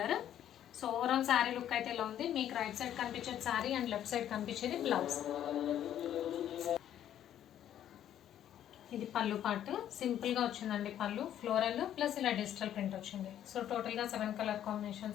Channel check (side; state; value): right; quieter; 10.9 dB